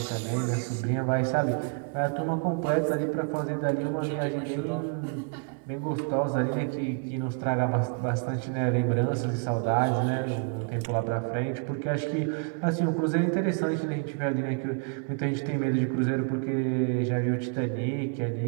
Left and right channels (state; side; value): quieter; left; 36.1 dB